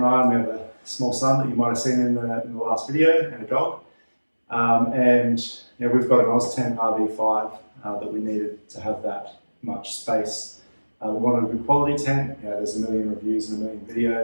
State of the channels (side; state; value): both; inverted; correlation -1.00